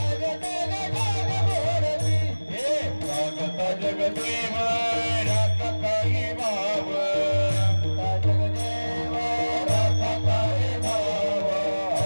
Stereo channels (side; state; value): both; inverted; correlation -1.00